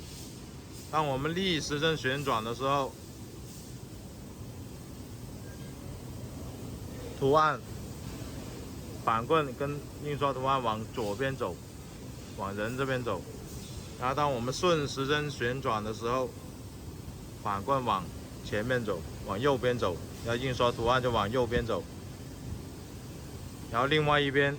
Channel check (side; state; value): both; identical; correlation 1.00